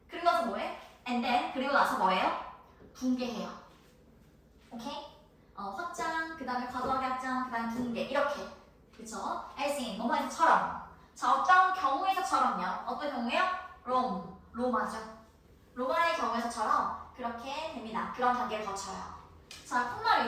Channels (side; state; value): both; identical; correlation 1.00